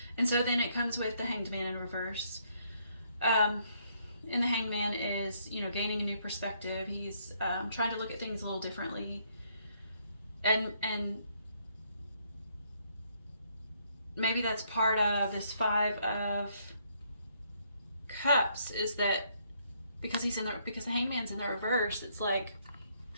And so then it comes with the Hanged Man in reverse. And the Hanged Man is, you know, gaining a new perspective. He's trying to look at things a little differently. And maybe that's part of this Five of Cups, is that because the Hangman's in the reverse, it's like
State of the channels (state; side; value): inverted; both; correlation -0.70